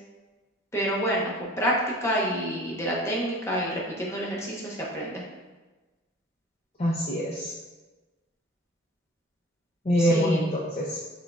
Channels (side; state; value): both; normal; correlation 0.47